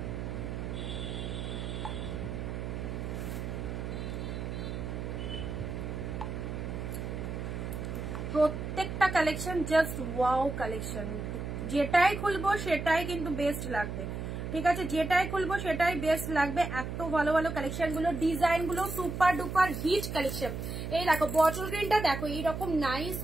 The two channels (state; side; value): noise; right; hum, 5 dB below the sound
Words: প্রত্যেকটা কালেকশন জাস্ট ওয়াও কালেকশন, যেটাই খুলবো সেটাই কিন্তু বেস্ট লাগবে, ঠিক আছে? যেটাই খুলবো সেটাই বেস্ট লাগবে। এত ভালো ভালো কালেকশন গুলো, ডিজাইন গুলো সুপার ডুপার হিট কালেকশন। এই দেখো বটল গ্রিনটা দেখো, এইরকম নাইস